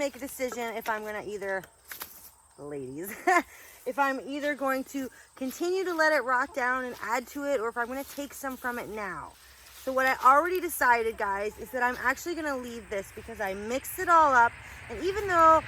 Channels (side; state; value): both; identical; correlation 1.00